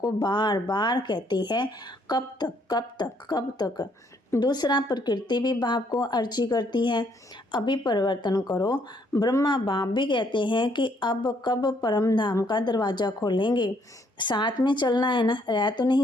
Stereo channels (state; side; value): normal; both; correlation 0.69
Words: बार बार कहती है, कब तक कब तक कब तक। दूसरा, प्रकृति भी बाप को अर्जी करती है, अभी परिवर्तन करो। ब्रह्मा बाप भी कहते हैं कि अब कब परम धाम का दरवाज़ा खोलेंगे। साथ में चलना है ना, रह तो